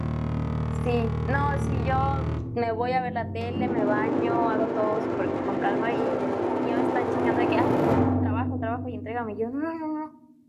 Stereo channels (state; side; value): identical; both; correlation 1.00